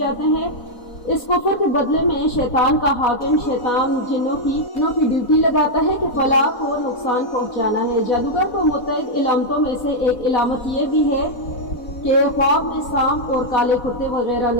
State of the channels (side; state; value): right; late; 4.1 ms